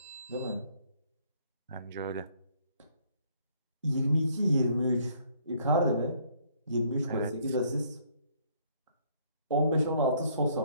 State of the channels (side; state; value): both; inverted; correlation -0.65